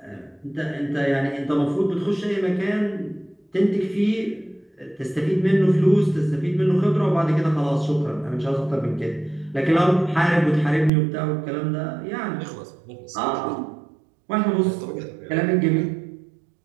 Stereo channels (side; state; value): left; drops out; at 10.9 s